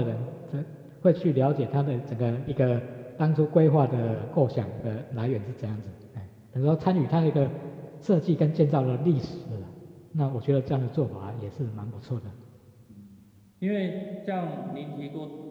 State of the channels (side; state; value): both; identical; correlation 1.00